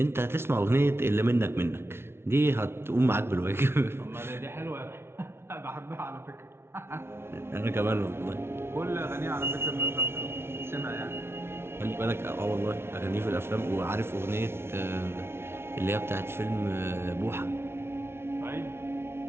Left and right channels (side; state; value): left; late; 0.12 ms